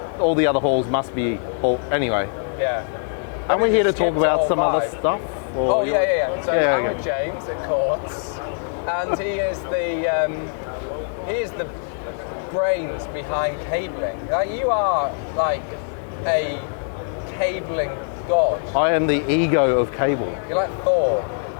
all the other halls must be Hall... Anyway. Yeah. And we're here to talk about some other stuff. Or... Oh, yeah. So I'm with James at Kordz, and he is the brains behind cabling. You are like a cabling god. I am the ego of cable. You're like Thor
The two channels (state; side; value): silent; right; 64 dB below the other